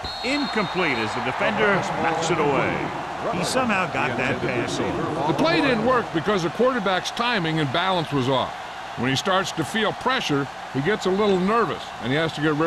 Incomplete as the defender knocks it away. He somehow got that pass off. The play didn't work because the quarterback's timing and balance was off. When he starts to feel pressure, he gets a little nervous, and he has to get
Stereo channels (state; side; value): identical; both; correlation 1.00